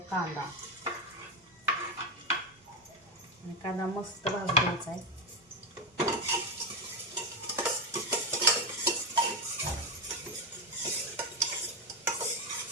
कांदा आणि कांदा मस्त भाजून द्यायचा आहे.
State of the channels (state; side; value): normal; both; correlation 0.12